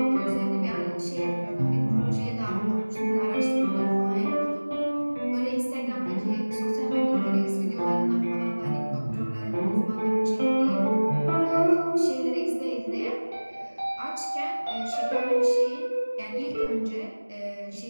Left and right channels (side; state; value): both; inverted; correlation -1.00